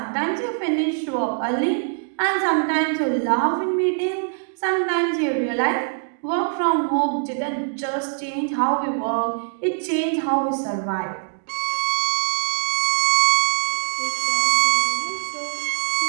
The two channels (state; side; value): silent; left; digital silence